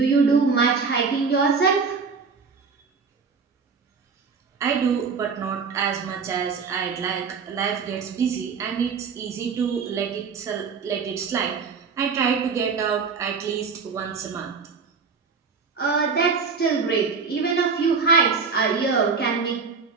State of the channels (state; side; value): quieter; left; 5.3 dB